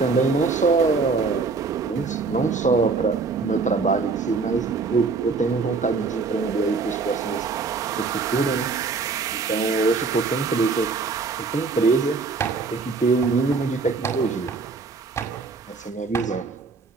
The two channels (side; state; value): left; quieter; 4.4 dB